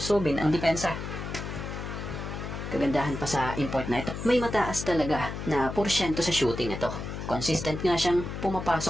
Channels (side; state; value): left; noise; hum, 7 dB below the sound